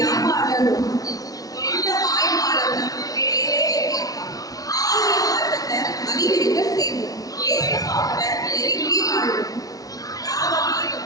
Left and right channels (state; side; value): late; right; 0.18 ms